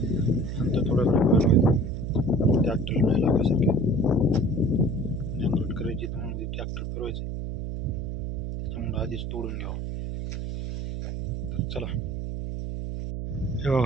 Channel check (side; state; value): right; noise; hum, 4 dB below the sound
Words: नंतर थोडं ट्रॅक्टर नाही लागल्यासारखे नांगरट करायची, त्यामुळे ट्रॅक्टर फिरवायचे, त्याच्यामुळे आधीच तोडून घ्यावं. तर चला हे